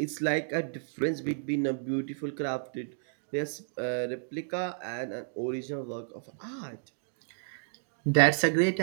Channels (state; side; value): silent; left; digital silence